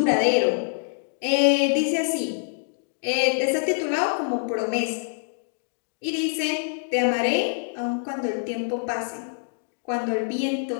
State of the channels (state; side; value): silent; right; digital silence